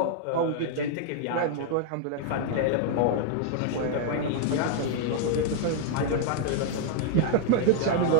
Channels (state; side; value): different; both; correlation -0.01